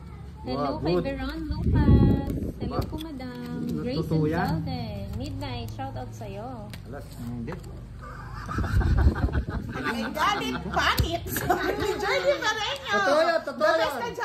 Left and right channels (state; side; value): identical; both; correlation 1.00